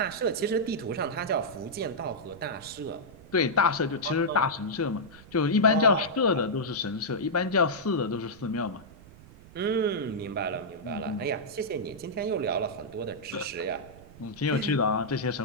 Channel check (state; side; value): noise; right; rumble, 20 dB below the sound